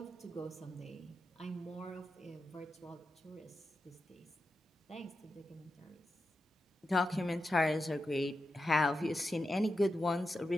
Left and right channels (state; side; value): normal; both; correlation 0.89